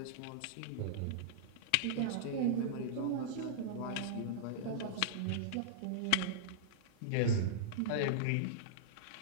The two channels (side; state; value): both; different; correlation -0.02